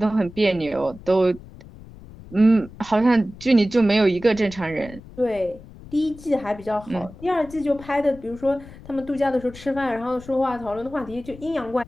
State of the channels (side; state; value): left; noise; rumble, 18 dB below the sound